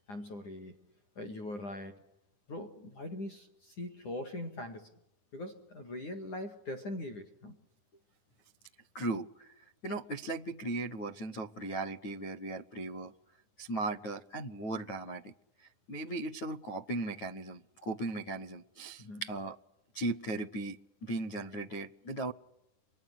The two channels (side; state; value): right; late; 9.9 ms